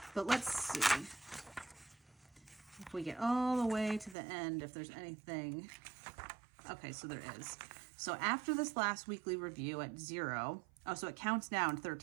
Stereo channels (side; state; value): left; drops out; at 4.2 s